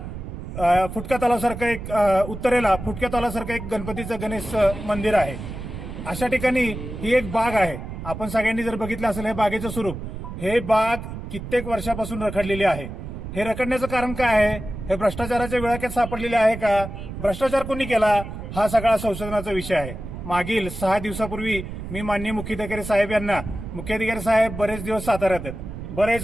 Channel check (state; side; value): noise; right; rumble, 9 dB below the sound